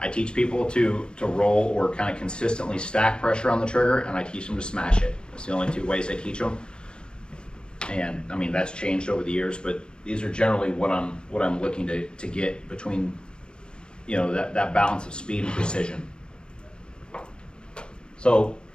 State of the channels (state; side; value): late; right; 0.050 ms